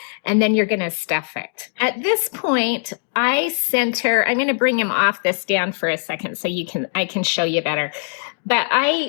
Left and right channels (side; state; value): right; silent; digital silence